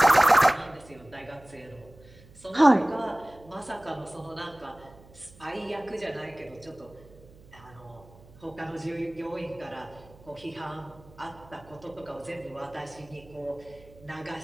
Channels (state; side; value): noise; right; hum, 23 dB below the sound